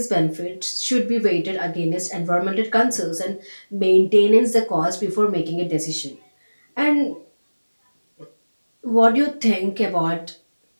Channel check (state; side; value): inverted; both; correlation -1.00